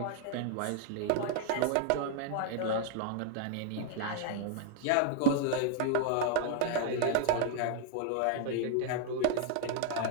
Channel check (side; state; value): both; different; correlation 0.00